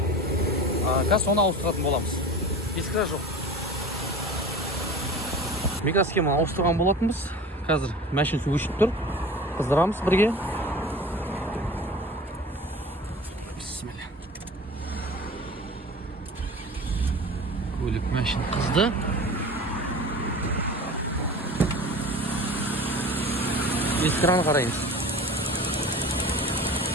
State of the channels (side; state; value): both; normal; correlation 0.37